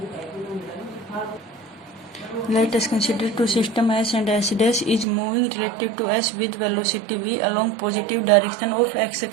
Let us consider two system S and S dash is moving relative to S with velocity v along positive direction of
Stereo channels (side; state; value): left; drops out; at 5.1 s